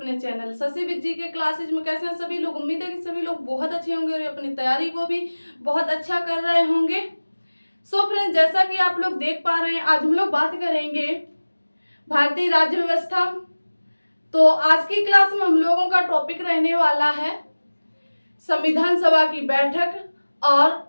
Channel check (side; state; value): both; inverted; correlation -1.00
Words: चैनल शशि विद जी के क्लासेज में। कैसे हैं सभी लोग? उम्मीद है कि सभी लोग बहुत अच्छे होंगे और अपनी तैयारी को भी बहुत अच्छा कर रहे होंगे। सो फ्रेंड्स, जैसा कि आप लोग देख पा रहे हैं, आज हम लोग बात करेंगे भारतीय राज्य व्यवस्था। तो आज की क्लास में हम लोगों का टॉपिक रहने वाला है संविधान सभा की बैठक